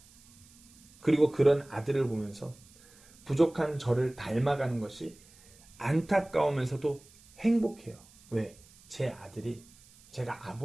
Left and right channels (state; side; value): noise; right; hiss, 26 dB below the sound